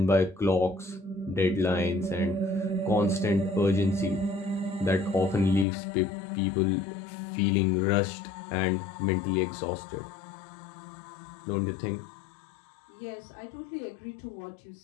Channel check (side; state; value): right; drops out; at 5.7 s